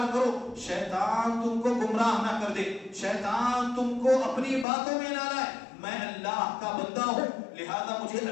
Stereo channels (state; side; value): drops out; right; at 4.7 s